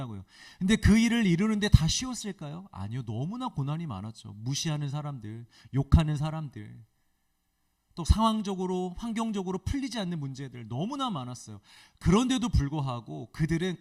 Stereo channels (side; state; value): both; identical; correlation 1.00